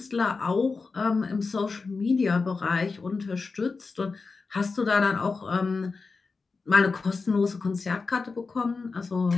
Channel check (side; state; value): right; quieter; 4.3 dB